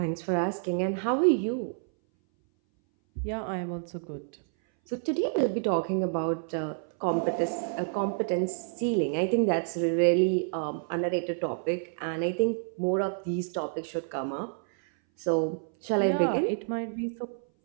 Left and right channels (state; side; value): silent; left; 58 dB below the other